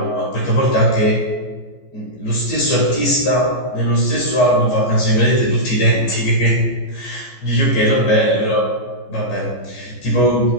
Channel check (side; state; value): right; late; 15 ms